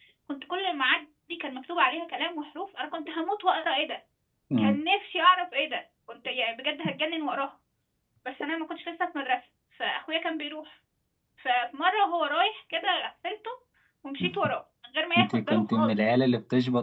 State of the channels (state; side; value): identical; both; correlation 1.00